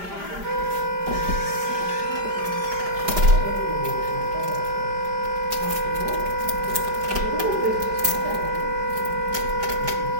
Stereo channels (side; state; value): left; late; 5.0 ms